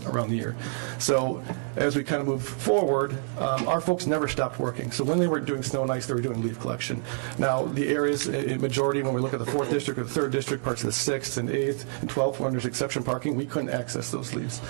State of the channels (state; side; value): silent; left; 60 dB below the other